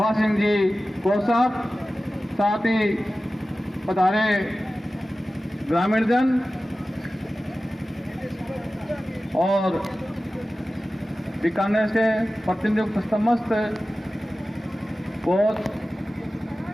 सिंह जी को साहब, साथ ही पधारे ग्रामीण जन और बीकानेर से प्रतिनियुक्त समस्त कोच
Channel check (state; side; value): normal; both; correlation 0.95